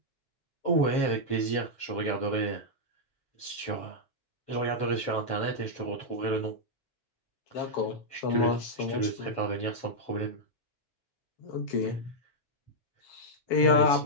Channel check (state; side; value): late; right; 7.3 ms